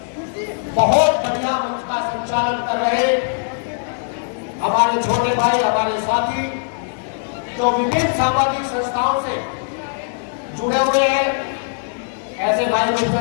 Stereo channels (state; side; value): silent; right; digital silence